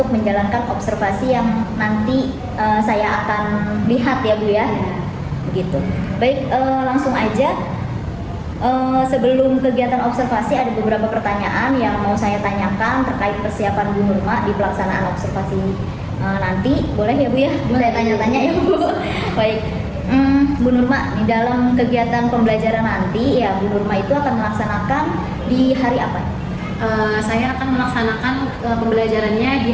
menjalankan observasi yang nanti saya akan lihat ya Bu ya. Begitu. Baik, langsung aja. Sebelum kegiatan observasi ada beberapa pertanyaan yang mau saya tanyakan terkait persiapan Bu Nurma di pelaksanaan observasi nanti. Boleh ya Bu ya? Boleh tanya-tanya ya Bu. Baik. Bu Nurma, di dalam kegiatan pembelajaran nanti ya Bu Nurma itu akan melaksanakan di hari apa? Saya akan melaksanakan pembelajarannya di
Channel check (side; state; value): both; identical; correlation 1.00